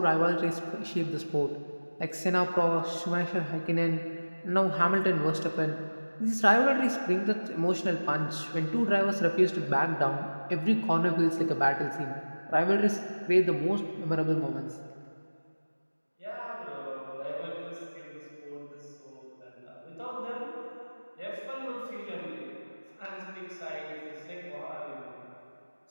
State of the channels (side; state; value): both; inverted; correlation -1.00